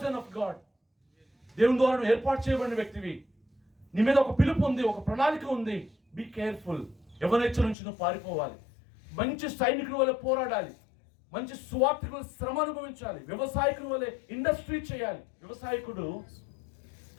of God. దేవుని ద్వారా నువ్వు ఏర్పాటు చేయబడిన వ్యక్తివి. నీ మీద ఒక పిలుపు ఉంది, ఒక ప్రణాళిక ఉంది. Be careful. యవ్వనేచ్ఛ నుంచి నువ్వు పారిపోవాలి. మంచి సైనికుల వల్ల పోరాడాలి. మంచి సువార్థికుల శ్రమ అనుభవించాలి. వ్యవసాయకుల వల్ల ఇండస్ట్రీ చేయాలి. వ్యవసాయకుడు,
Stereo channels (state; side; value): drops out; right; at 7.8 s